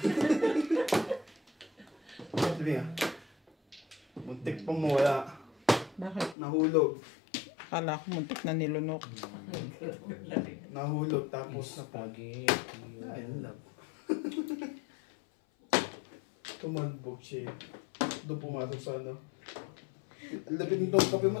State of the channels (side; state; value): right; drops out; at 6.4 s